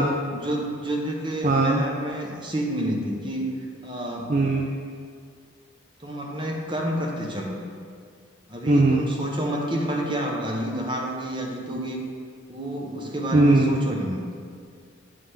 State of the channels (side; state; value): both; normal; correlation 0.65